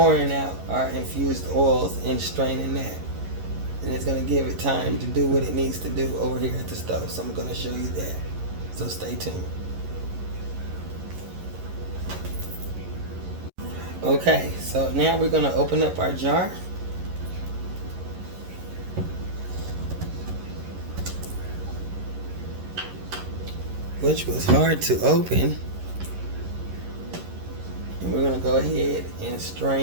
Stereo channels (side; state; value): left; late; 11 ms